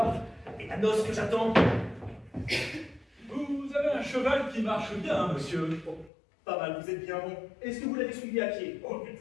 Et la noce que j'attends? Vous avez un cheval qui marche bien, monsieur. Oh, pas mal, vous êtes bien bon. Est-ce que vous l'avez suivi à pied? Oh, du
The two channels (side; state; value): right; drops out; at 6.1 s